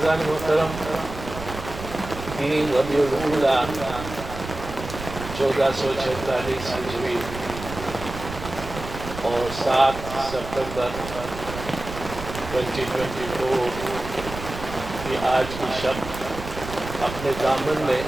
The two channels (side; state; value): right; noise; rumble, 10 dB below the sound